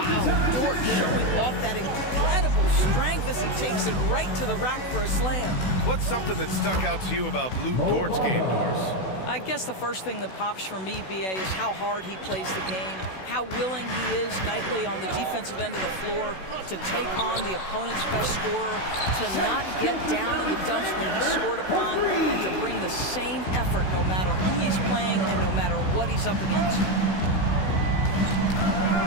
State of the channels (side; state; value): right; late; 16 ms